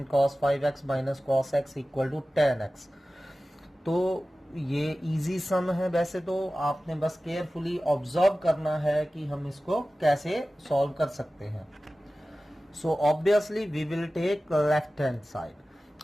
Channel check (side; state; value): both; normal; correlation 0.96